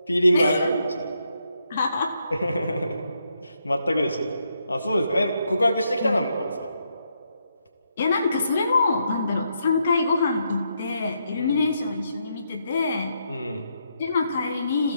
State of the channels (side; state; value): both; inverted; correlation -0.79